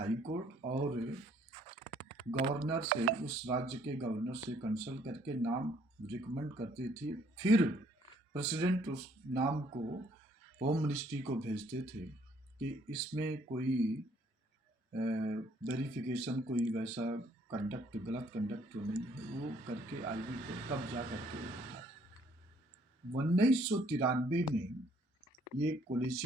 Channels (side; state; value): both; normal; correlation 0.64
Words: कोर्ट और गवर्नर से, उस राज्य के गवर्नर से कंसल्ट करके नाम रिकमेंड करती थी। फिर प्रेसिडेंट उस नाम को होम मिनिस्ट्री को भेजते थे कि इसमें कोई वेरिफिकेशन, कोई वैसा कंडक्ट, गलत कंडक्ट तो नहीं है, वो करके आईबी को तब जा करके 1993 में ये